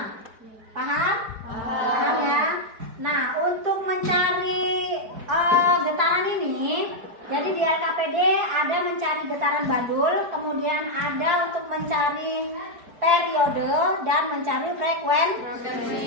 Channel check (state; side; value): late; left; 4.7 ms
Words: Paham? Paham ya? Nah, untuk mencari getaran ini, jadi di LKPD ada mencari getaran bandul, kemudian ada untuk mencari periode dan mencari